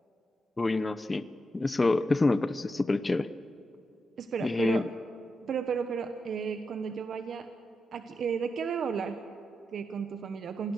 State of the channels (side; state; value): both; normal; correlation 0.87